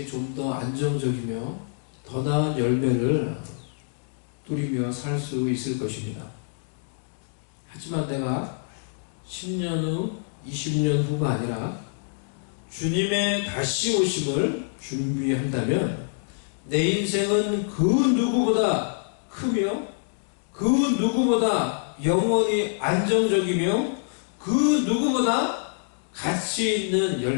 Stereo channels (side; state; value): right; silent; digital silence